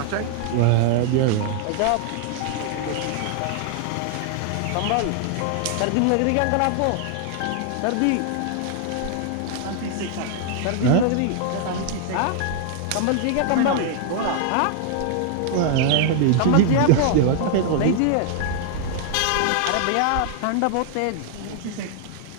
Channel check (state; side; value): different; both; correlation 0.00